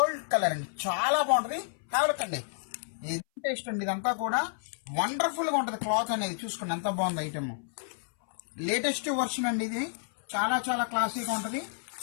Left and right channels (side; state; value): right; silent; 58 dB below the other